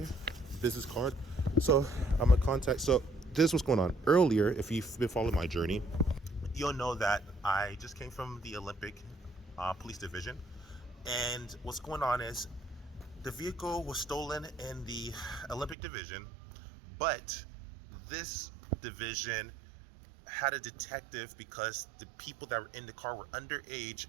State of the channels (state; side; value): drops out; left; at 15.8 s